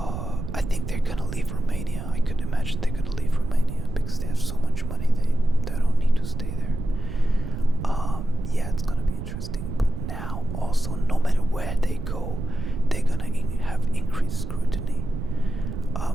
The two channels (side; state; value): right; noise; rumble, 6 dB below the sound